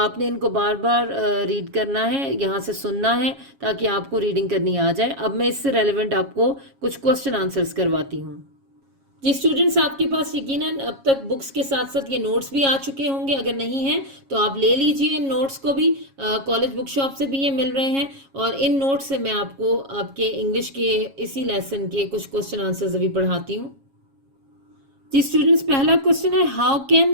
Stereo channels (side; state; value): left; late; 7.3 ms